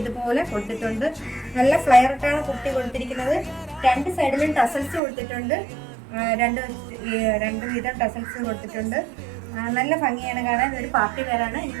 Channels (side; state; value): left; drops out; at 5.0 s